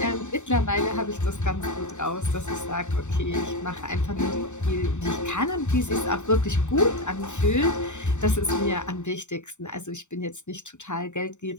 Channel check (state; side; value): late; right; 0.84 ms